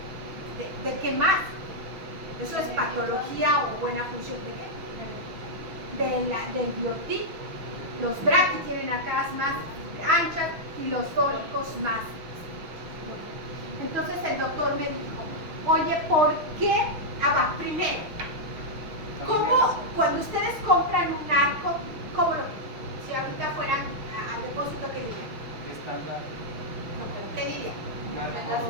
¿De qué más? ¿Eso es patología o buena función de qué? Del biotipo. Los braquis tienen arcadas más anchas y los fólicos más. Entonces el doctor me dijo, oye, ¿por qué? Primero, ¿cómo cuando ustedes compran un arco, cómo lo? Si ahorita fueran al depósito, ¿qué dirían? Estándar. No, pero ¿qué dirían?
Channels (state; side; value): late; left; 6.1 ms